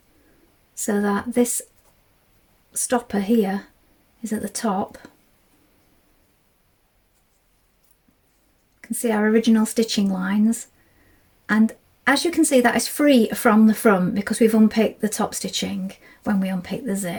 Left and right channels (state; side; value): identical; both; correlation 1.00